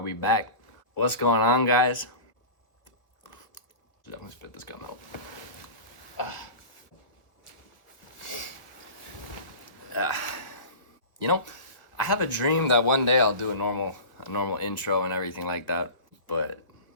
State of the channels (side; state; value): right; late; 1.4 ms